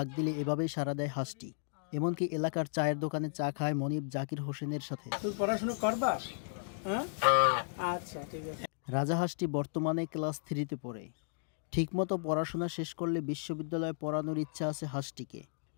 দিলে এভাবেই সাড়া দেয় হাঁসটি। এমনকি এলাকার চায়ের দোকানে চা খায় মনিব জাকির হোসেনের সাথে। পড়াশোনা করবা? আচ্ছা ঠিক আছে। রাজা হাঁসটি বর্তমানে ক্লাস 3-তে পড়ে। ঠিকমতো পড়াশোনা শেষ করলে বিশ্ববিদ্যালয়ে পড়ানোর ইচ্ছা আছে হাঁসটিকে।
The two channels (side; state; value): right; silent; digital silence